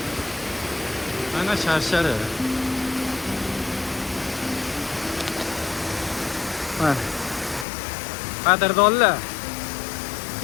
Mana sharshari. Mana. Qadrdonlar.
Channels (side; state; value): right; drops out; at 7.7 s